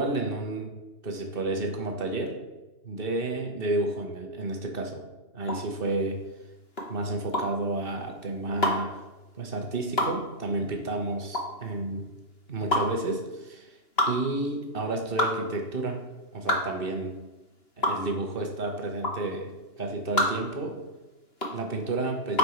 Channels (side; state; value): right; late; 2.9 ms